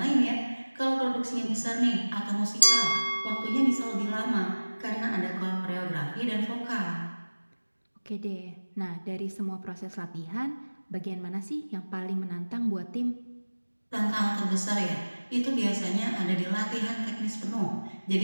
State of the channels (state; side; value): inverted; both; correlation -1.00